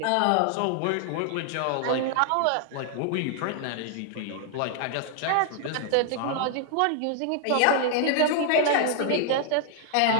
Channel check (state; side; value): different; both; correlation 0.00